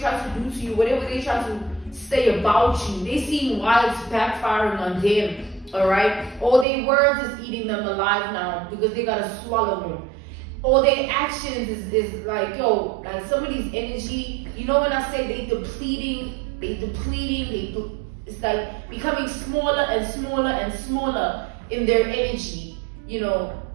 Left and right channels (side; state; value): left; drops out; at 6.7 s